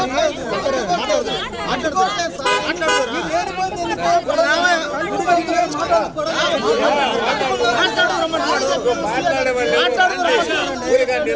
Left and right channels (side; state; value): both; identical; correlation 1.00